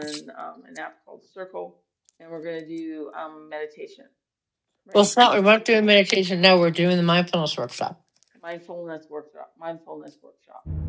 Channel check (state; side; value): identical; both; correlation 1.00